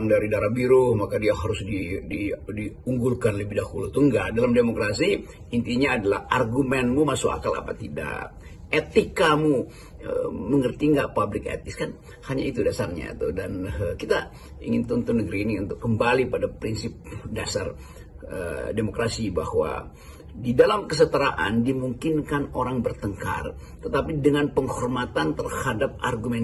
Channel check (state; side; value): identical; both; correlation 1.00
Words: dari darah biru maka dia harus diunggulkan lebih dahulu. Itu enggak. Dalam demokrasi intinya adalah argumenmu masuk akal apa tidak, etikamu mengerti nggak public ethics, kan hanya itu dasarnya tuh. Dan kita ingin tuntun negeri ini untuk kembali pada prinsip dasar demokrasi, bahwa di dalam kesetaraan dimungkinkan orang bertengkar, tetapi dengan penghormatan terhadap